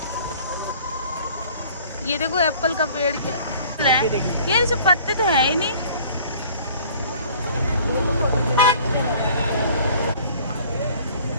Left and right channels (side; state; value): both; inverted; correlation -0.51